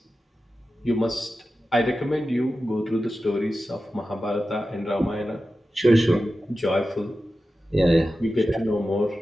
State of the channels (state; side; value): normal; both; correlation 0.93